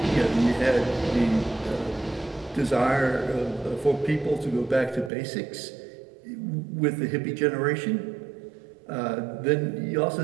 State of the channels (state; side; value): drops out; left; at 5.1 s